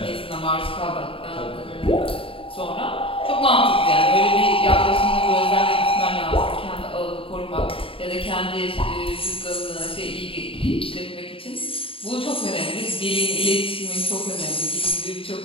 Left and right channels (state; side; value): late; right; 0.26 ms